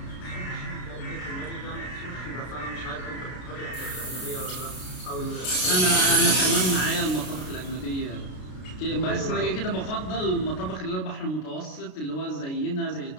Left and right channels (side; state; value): right; late; 33 ms